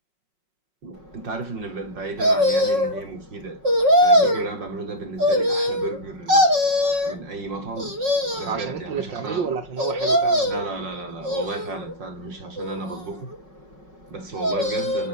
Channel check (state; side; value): late; left; 5.4 ms